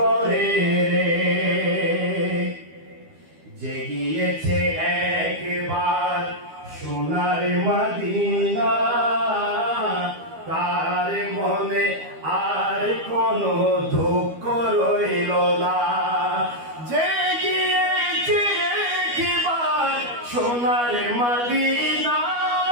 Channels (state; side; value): late; left; 12 ms